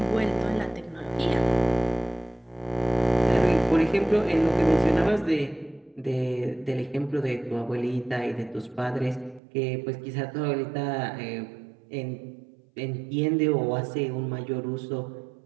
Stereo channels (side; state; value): left; drops out; at 9.4 s